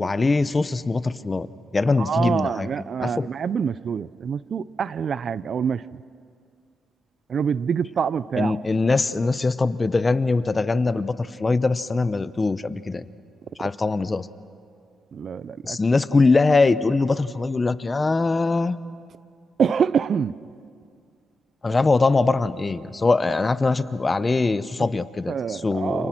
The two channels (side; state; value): both; normal; correlation 0.90